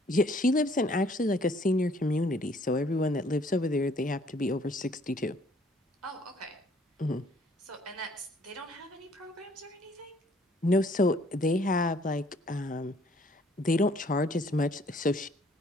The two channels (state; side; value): normal; both; correlation 0.61